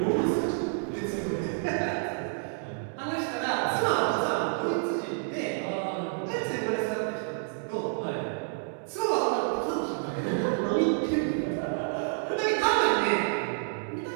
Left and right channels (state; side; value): silent; left; digital silence